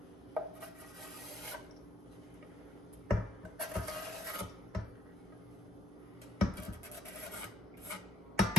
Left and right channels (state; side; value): normal; both; correlation 0.67